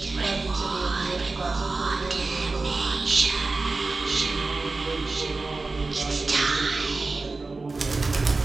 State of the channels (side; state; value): left; quieter; 3.6 dB